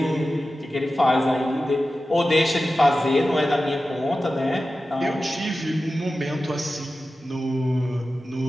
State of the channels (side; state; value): both; normal; correlation 0.94